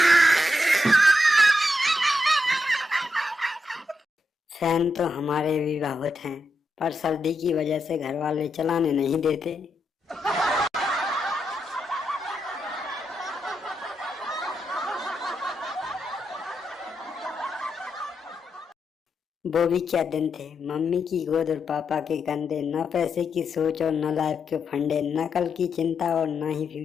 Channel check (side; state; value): both; normal; correlation 0.84